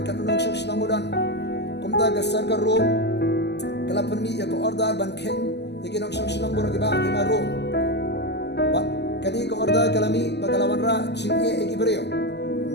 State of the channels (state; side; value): late; right; 0.50 ms